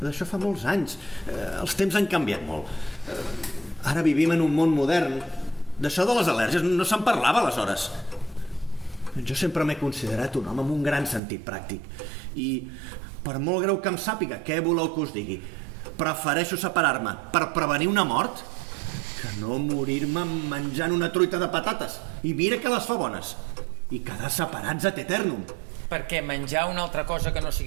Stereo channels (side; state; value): left; drops out; at 11.2 s